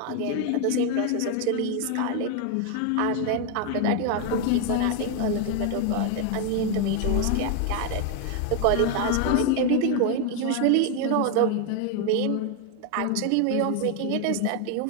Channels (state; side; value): different; both; correlation 0.01